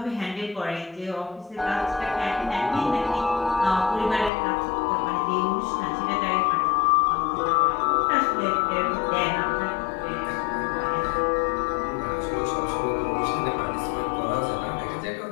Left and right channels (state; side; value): drops out; right; at 4.3 s